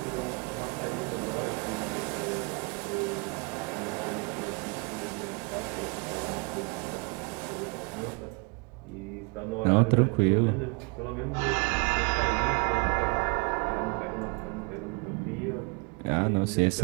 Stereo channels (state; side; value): quieter; left; 32.2 dB